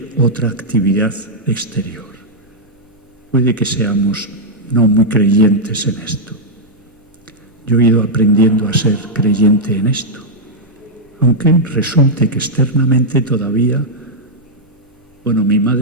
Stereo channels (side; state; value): both; normal; correlation -0.05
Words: otra actividad exterior. Puede que seamos no muy creyentes en esto. Yo he ido aprendiendo a ser creyente en esto, aunque resulte que externamente todavía, bueno, mi